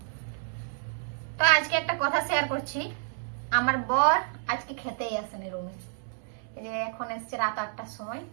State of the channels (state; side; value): silent; left; digital silence